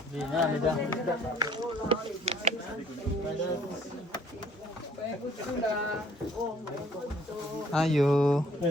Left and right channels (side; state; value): both; normal; correlation 0.59